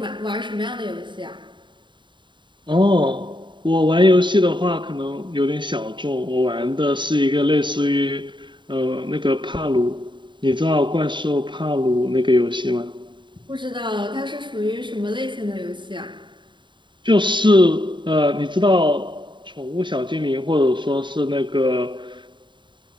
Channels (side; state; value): left; late; 0.23 ms